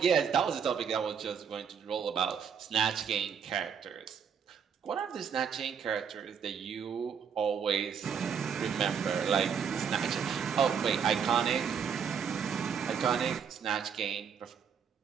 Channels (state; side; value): quieter; left; 7.1 dB